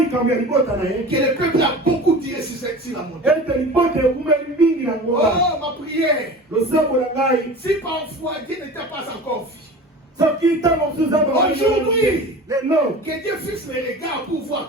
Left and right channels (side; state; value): both; normal; correlation 0.36